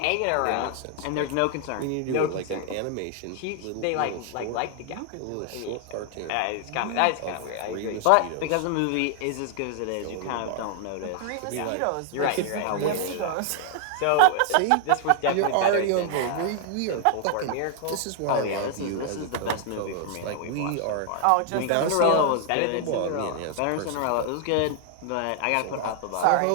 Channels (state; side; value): different; both; correlation 0.00